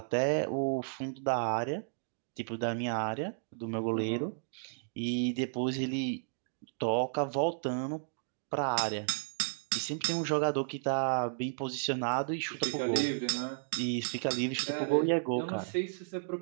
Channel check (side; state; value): left; silent; digital silence